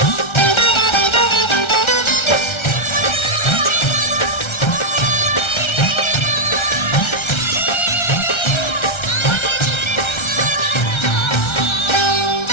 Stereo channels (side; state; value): right; late; 1.3 ms